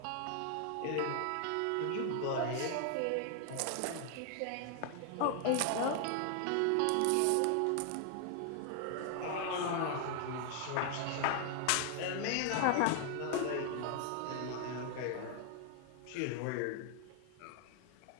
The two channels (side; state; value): both; different; correlation 0.00